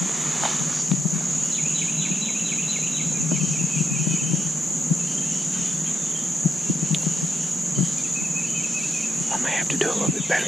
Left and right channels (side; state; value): both; normal; correlation 0.82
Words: I'm gonna have to do a little bit